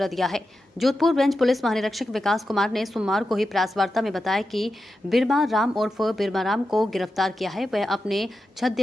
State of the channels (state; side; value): normal; both; correlation 0.90